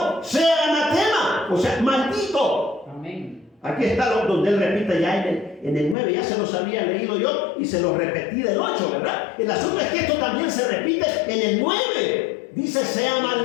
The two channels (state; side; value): drops out; right; at 6.0 s